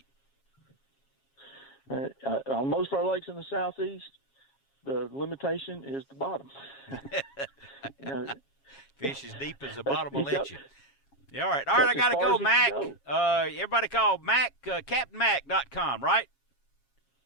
On most of our lakes in the southeast, the limitation is the bottom. Fish as deep as the bottom will let you. Yeah, all right. That's I got to as far go, as it Mac. can go. Everybody call Mac, CaptainMac.com, right?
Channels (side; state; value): right; late; 7.3 ms